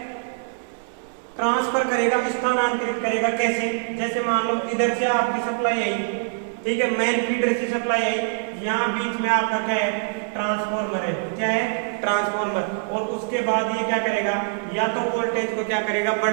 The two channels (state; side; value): silent; left; digital silence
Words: ट्रांसफर करेगा, स्थानांतरित करेगा। कैसे? जैसे मान लो इधर से आपकी सप्लाई आई, ठीक है, मेन फीडर से सप्लाई आई, यहाँ बीच में आपका क्या है? ट्रांसफॉर्मर है। क्या है? ट्रांसफॉर्मर। और उसके बाद ये क्या करेगा? या तो वोल्टेज को क्या करेगा?